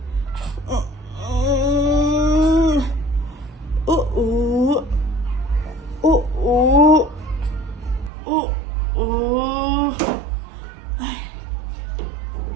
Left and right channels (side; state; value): left; drops out; at 8.1 s